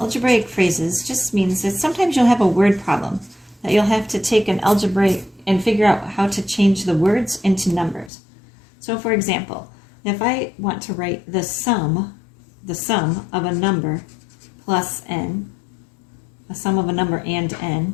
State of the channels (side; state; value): right; drops out; at 8.1 s